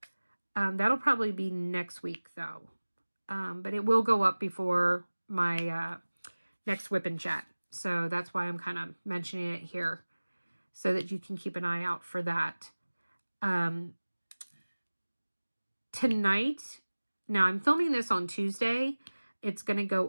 That'll probably be next week though. But it will go up before my next WIP chat. So that's why I'm kind of mentioning it here so that you can keep an eye out for that. Tonight, now I'm filming this on Tuesday. It's going to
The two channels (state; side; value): inverted; both; correlation -1.00